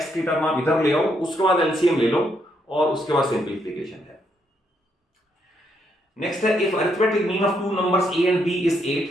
की term आप इधर ले आओ, उसके बाद एलसीएम ले लो, और उसके बाद सिंपलीफिकेशन है। नेक्स्ट है, if arithmetic mean of two numbers a and b is 8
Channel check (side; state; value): both; normal; correlation 0.75